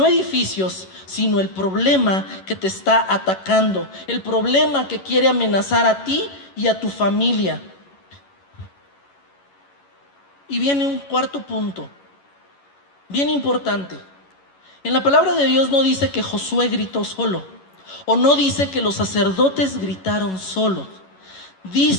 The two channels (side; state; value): right; late; 11 ms